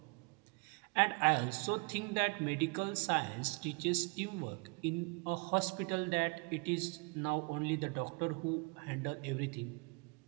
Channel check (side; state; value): left; quieter; 32.5 dB